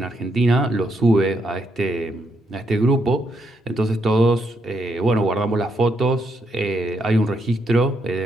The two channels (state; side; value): normal; both; correlation 0.77